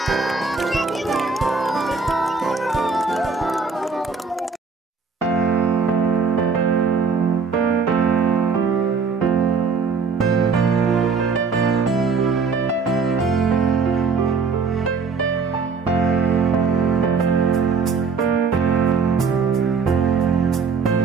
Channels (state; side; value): quieter; left; 5.0 dB